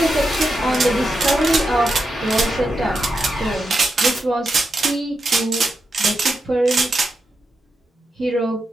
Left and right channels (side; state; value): both; normal; correlation 0.87